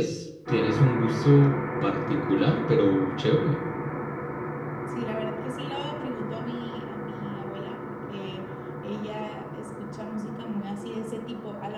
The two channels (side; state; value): both; identical; correlation 1.00